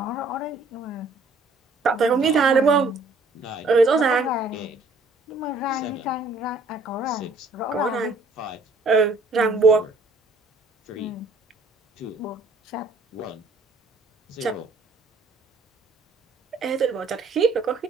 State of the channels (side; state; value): left; quieter; 3.1 dB